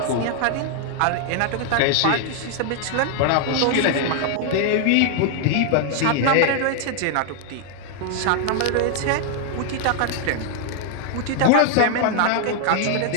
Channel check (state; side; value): different; both; correlation 0.00